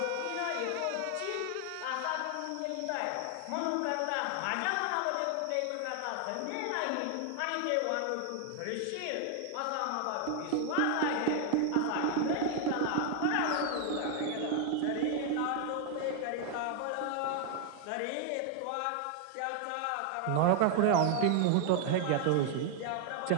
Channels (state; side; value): different; both; correlation 0.00